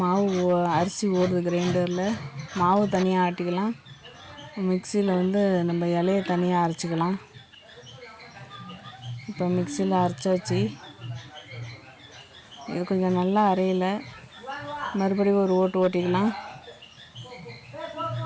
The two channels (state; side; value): identical; both; correlation 1.00